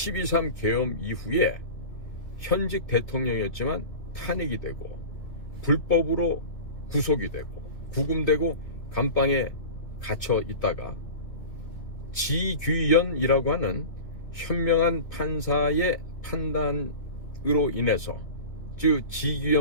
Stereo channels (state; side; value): late; right; 2.4 ms